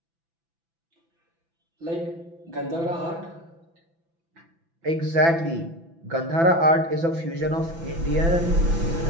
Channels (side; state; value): left; late; 6.0 ms